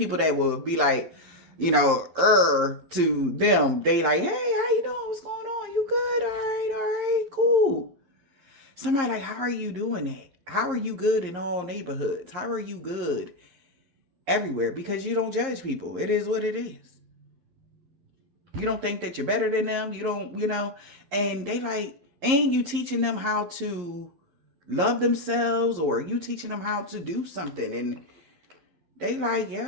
that will be like, to them, they like, hey, how you doing? What's going on? You good? All right, cool. Somebody like, how are you doing that? How are you good in all neighborhoods? How are you good everywhere? Because you don't judge people. It is what it is. You don't think that you're better than them. You don't, and they like, and you teaching them how to love themselves, or you teaching them how to do something, and they like,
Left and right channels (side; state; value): left; late; 11 ms